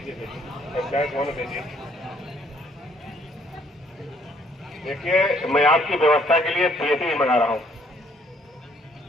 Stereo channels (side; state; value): both; normal; correlation 0.65